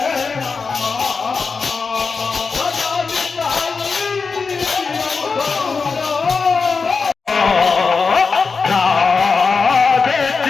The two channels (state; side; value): quieter; right; 4.8 dB